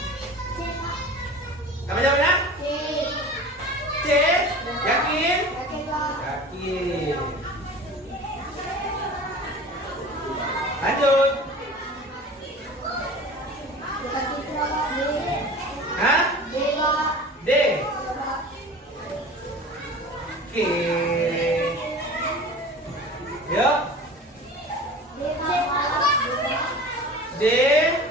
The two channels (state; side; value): normal; both; correlation 0.38